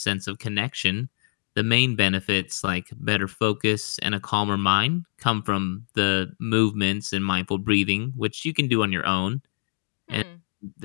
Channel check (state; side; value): silent; right; digital silence